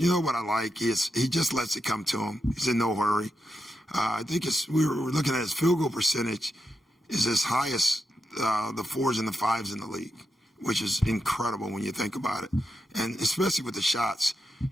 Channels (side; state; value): both; normal; correlation 0.86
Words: know what I like? He just lets it come to him. He's in no hurry. I think we were looking at his field goal percentage is as high as the 4s and the 5s in the league, which is incredible when you think about it. And especially with the shots.